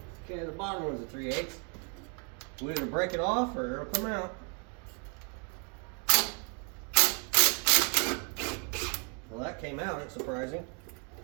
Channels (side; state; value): left; quieter; 38.4 dB